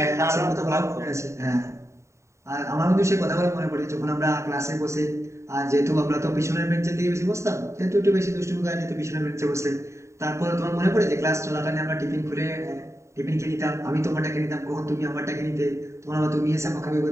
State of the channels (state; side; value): late; left; 0.14 ms